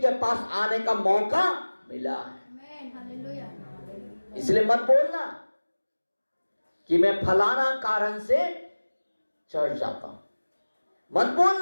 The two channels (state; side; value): inverted; both; correlation -1.00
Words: पास आने का मौका मिला है। इसलिए मत बोलना कि मैं फलाना कारण से चर्च जाता हूं, मत